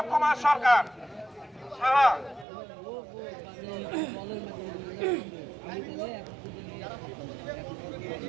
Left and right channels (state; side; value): drops out; left; at 2.5 s